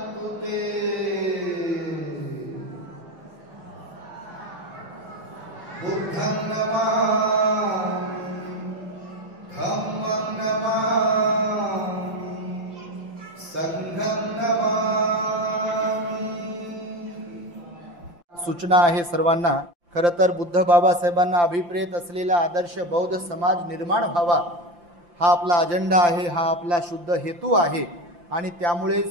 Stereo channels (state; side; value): late; left; 5.8 ms